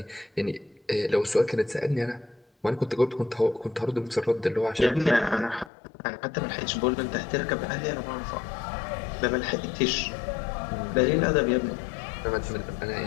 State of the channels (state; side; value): drops out; right; at 5.7 s